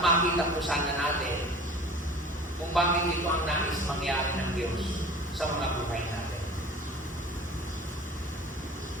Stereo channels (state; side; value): normal; both; correlation 0.42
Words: makita po sana natin kung bakit ito ang nais mangyari ng Diyos sa mga buhay natin.